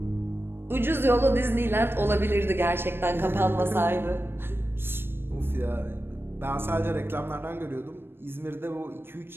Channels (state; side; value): late; left; 0.10 ms